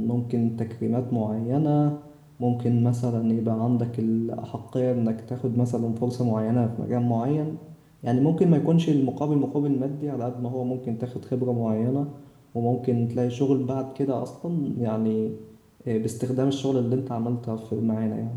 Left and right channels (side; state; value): both; identical; correlation 1.00